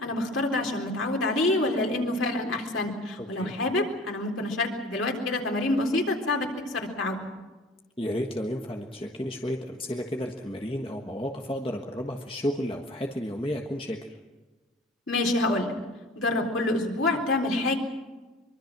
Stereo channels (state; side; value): normal; both; correlation 0.46